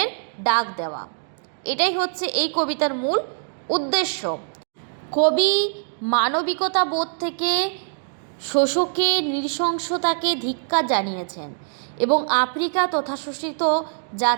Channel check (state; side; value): silent; left; digital silence